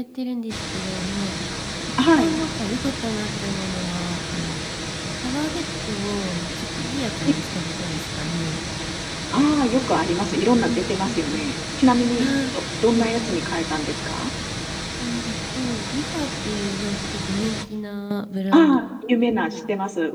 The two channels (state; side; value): identical; both; correlation 1.00